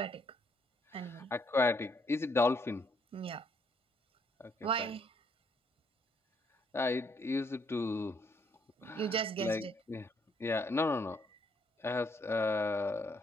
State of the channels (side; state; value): both; normal; correlation 0.70